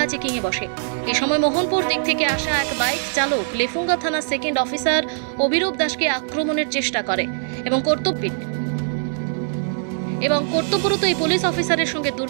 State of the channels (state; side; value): silent; left; 64 dB below the other